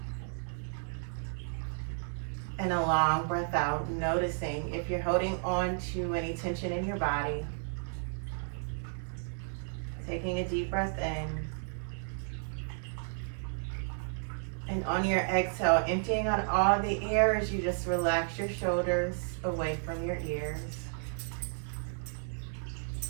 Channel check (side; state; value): left; silent; 56 dB below the other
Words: and a long breath out, noticing if you're holding on to any tension in your body. Taking a deep breath in. And on your exhale, emptying out all the air as you just relax your shoulders away from your ears.